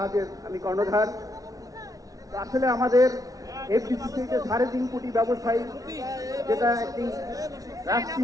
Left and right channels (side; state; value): left; late; 0.18 ms